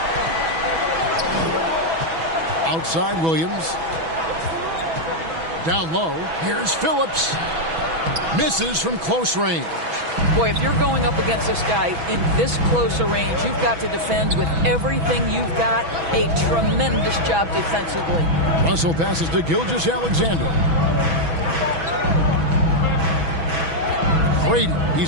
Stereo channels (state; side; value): late; left; 6.1 ms